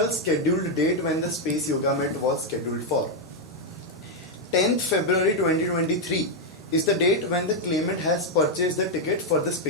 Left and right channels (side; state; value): both; normal; correlation 0.01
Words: scheduled date when the Space Yoga Met was scheduled for. 10th February 2023 is the date when the claimant has purchased the ticket for the